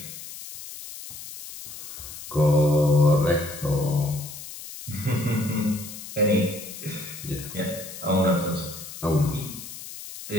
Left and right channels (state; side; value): noise; left; hiss, 12 dB below the sound